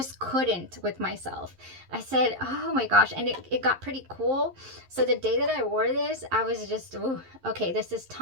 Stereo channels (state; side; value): late; left; 11 ms